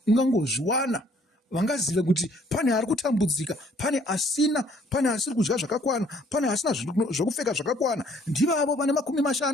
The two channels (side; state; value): both; normal; correlation 0.61